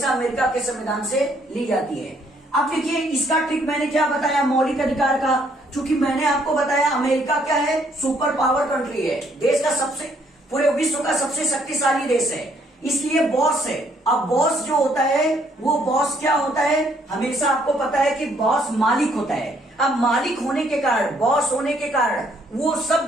अमेरिका के संविधान से ली जाती है। अब देखिए इसका ट्रिक मैंने क्या बताया, मौलिक अधिकार का, चूंकि मैंने आपको बताया अमेरिका क्या है, सुपर पावर कंट्री है, देश का सबसे, पूरे विश्व का सबसे शक्तिशाली देश है, इसलिए बॉस है। अब बॉस जो होता है वो बॉस क्या होता है, हमेशा आपको पता है कि बॉस मालिक होता है। अब मालिक होने के कारण, बॉस होने के कारण वो सब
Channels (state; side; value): normal; both; correlation 0.67